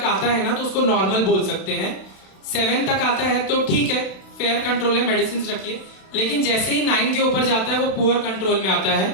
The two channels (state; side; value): late; right; 32 ms